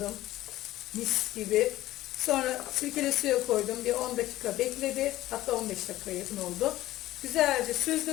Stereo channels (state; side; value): quieter; right; 15.6 dB